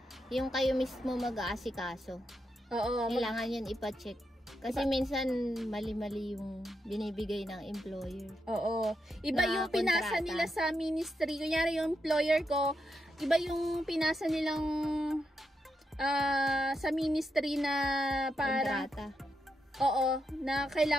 yung kayo mismo mag-aasikaso. Oo. Kailangan yun ipa-check. Kasi minsan, mali-mali yung binibigay ng employer. Oo. Iba yung pinasa nila sa ministry. Kunyari yung employer ko, iba yung pinasa nilang sa ministry na para... kontrata. Oo, na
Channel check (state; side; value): normal; both; correlation 0.84